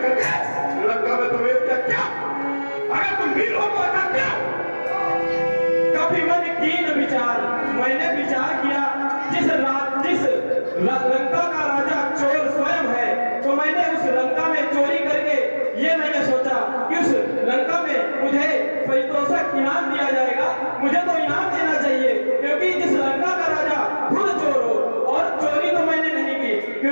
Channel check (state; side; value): inverted; both; correlation -1.00